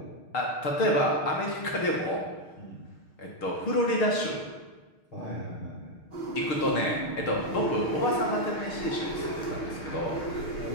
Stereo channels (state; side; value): late; right; 6.5 ms